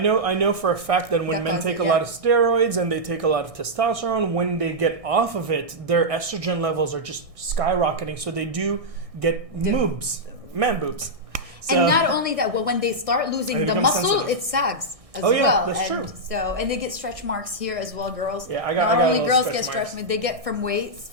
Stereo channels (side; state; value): left; late; 1.6 ms